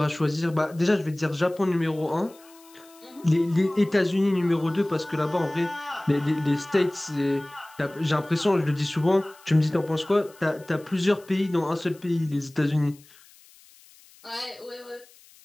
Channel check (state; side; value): noise; left; hiss, 26 dB below the sound